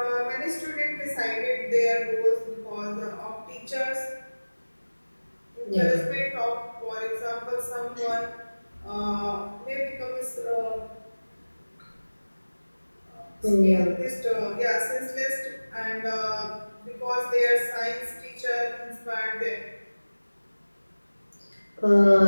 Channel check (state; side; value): inverted; both; correlation -1.00